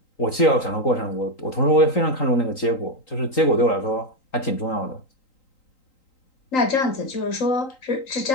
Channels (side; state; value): right; late; 3.9 ms